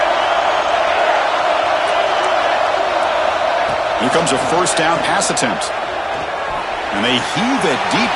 Here comes a 1st down pass attempt. And they heave it deep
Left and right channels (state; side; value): identical; both; correlation 1.00